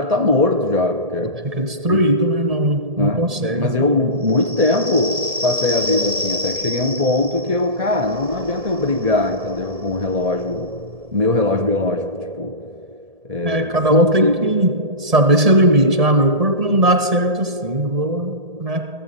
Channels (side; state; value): left; late; 1.7 ms